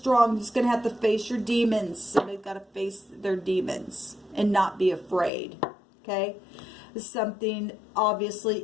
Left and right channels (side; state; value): right; drops out; at 5.3 s